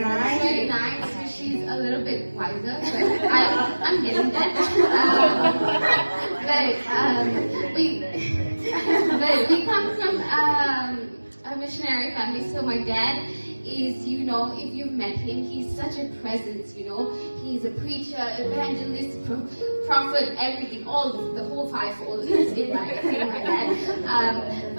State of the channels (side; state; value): both; inverted; correlation -1.00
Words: our life. Very nice. She's a little bit wiser, but I'm getting that. But we come from a missionary family. So my dad is, if you've met him, he's such a presence. He's a preacher, evangelist, prophet, everything, the whole fivefold is in my dad.